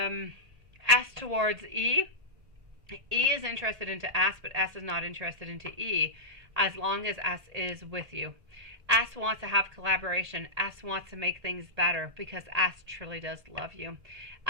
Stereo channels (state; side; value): late; left; 1.8 ms